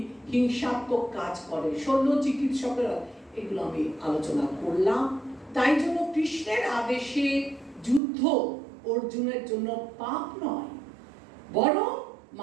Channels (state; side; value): drops out; left; at 8.0 s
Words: হিংসাত্মক কাজ করে, শল্য চিকিৎসকেরা, এগুলো আমি আলোচনা করলাম। তাই জন্য কৃষ্ণের আদেশে যুদ্ধ অর্জুনের জন্য পাপ নয়, বরং